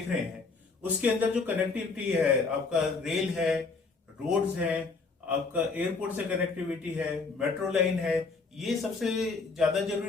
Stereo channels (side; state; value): right; quieter; 4.2 dB